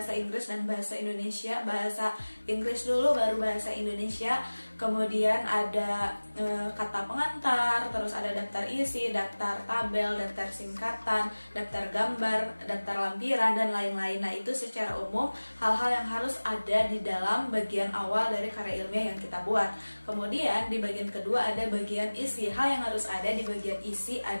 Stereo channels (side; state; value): both; inverted; correlation -1.00